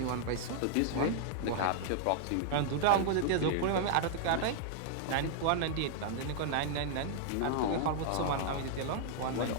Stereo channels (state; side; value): different; both; correlation -0.01